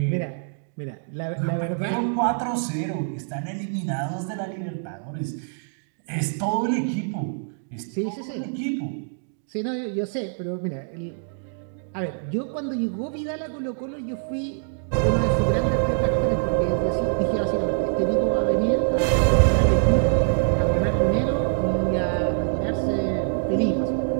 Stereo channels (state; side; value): silent; left; digital silence